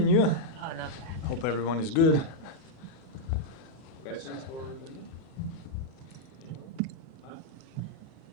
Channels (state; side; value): normal; both; correlation -0.02